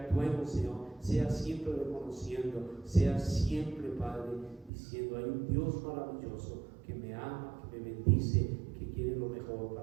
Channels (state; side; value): drops out; left; at 4.7 s